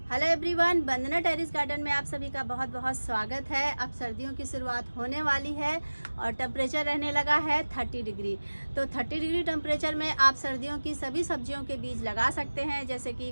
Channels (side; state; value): both; inverted; correlation -1.00